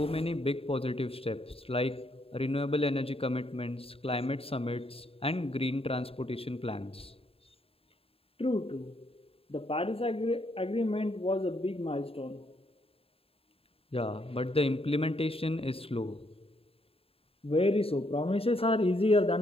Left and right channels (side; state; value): right; late; 0.27 ms